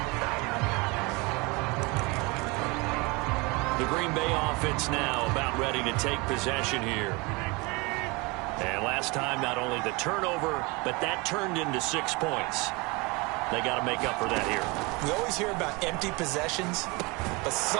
The Green Bay offense now about ready to take possession here. And last time, not only the turnover, but that turned into 6 points. They got to make up for that here. We always hear about empty possessions, but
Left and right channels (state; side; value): quieter; left; 26.5 dB